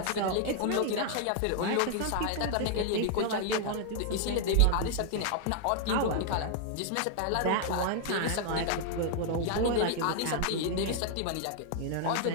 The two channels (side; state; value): both; different; correlation 0.00